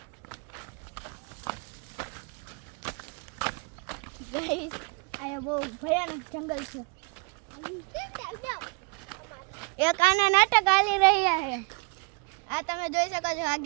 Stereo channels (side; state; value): left; quieter; 33.4 dB